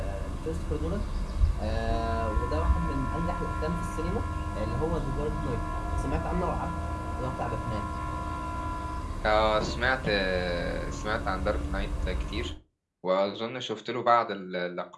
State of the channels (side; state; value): both; identical; correlation 1.00